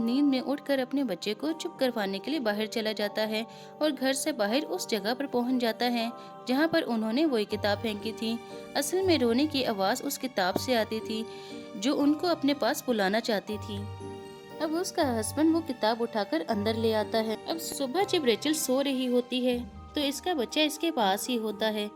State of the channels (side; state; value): both; identical; correlation 1.00